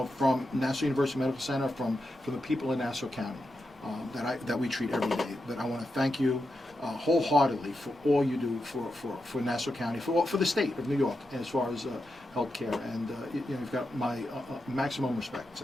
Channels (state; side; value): normal; both; correlation 0.87